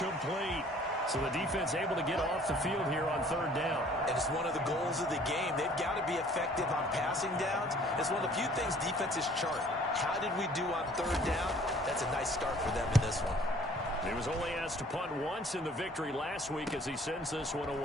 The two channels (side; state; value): both; normal; correlation 0.55